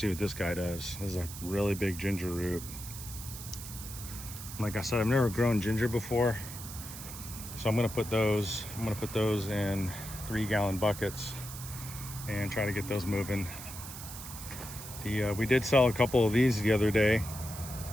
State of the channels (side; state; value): right; noise; hiss, 11 dB below the sound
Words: what this guy does. This is a really big ginger root. Like I said, I've never grown ginger before, so I'm gonna put those in 3-gallon buckets and try to get those moving. We did sell a couple of these the other day.